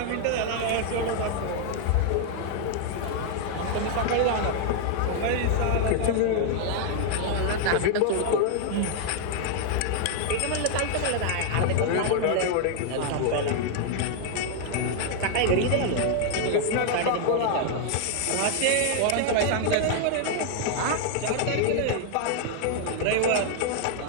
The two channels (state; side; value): different; both; correlation 0.00